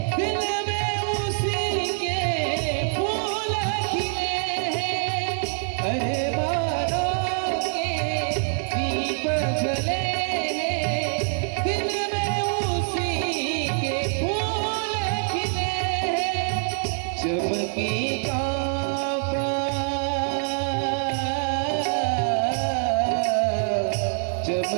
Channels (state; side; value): silent; left; digital silence